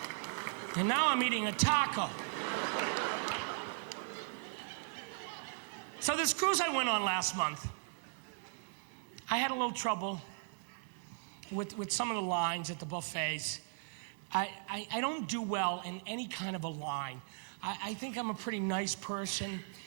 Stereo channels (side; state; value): left; silent; digital silence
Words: and now I'm eating a taco. So this cruise I went on last month, I had a little trouble with some of the lines at the buffets. I don't do well in any kind of a line. I think I'm a pretty nice person,